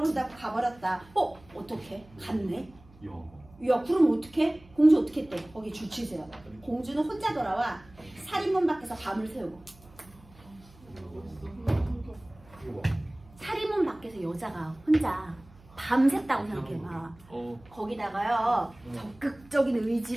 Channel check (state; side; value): noise; right; hum, 25 dB below the sound